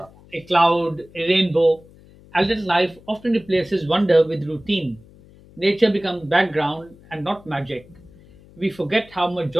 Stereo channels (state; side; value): noise; left; hum, 24 dB below the sound